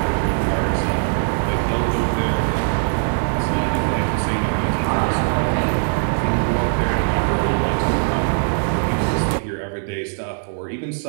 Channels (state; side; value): silent; left; digital silence